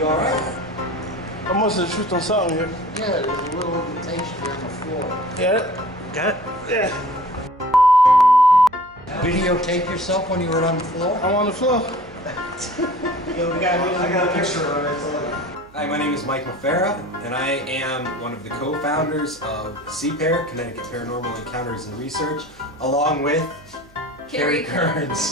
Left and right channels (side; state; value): right; noise; hum, 26 dB below the sound